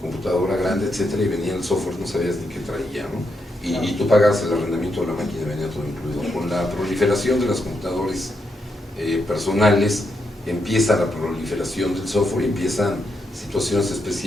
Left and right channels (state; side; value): normal; both; correlation 0.81